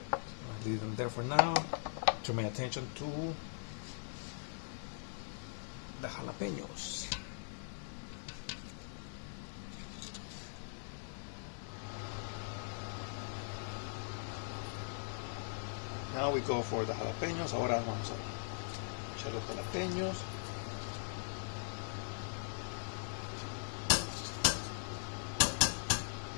Leave them there for now. Turn my attention to the jalapeños. Now we go for the jalapeños. Ahora vamos a echar los jalapeños.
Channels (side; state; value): right; silent; digital silence